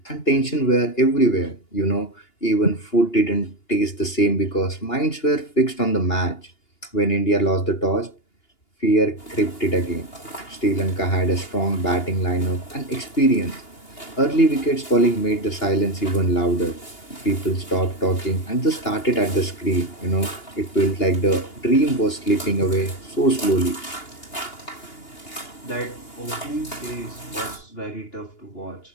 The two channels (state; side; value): late; right; 2.8 ms